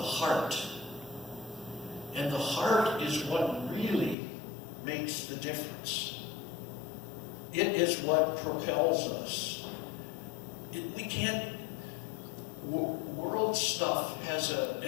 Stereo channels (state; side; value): drops out; right; at 4.2 s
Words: heart. And the heart is what really makes the difference. It is what propels us. We can't... World stuff has